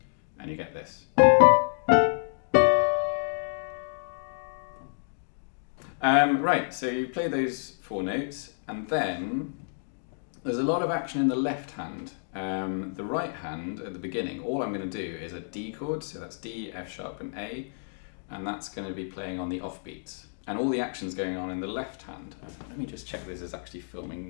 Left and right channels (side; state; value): right; silent; digital silence